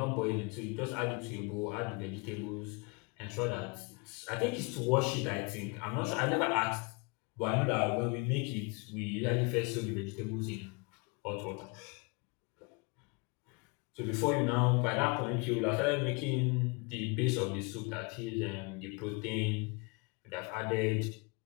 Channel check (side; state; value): right; quieter; 30.0 dB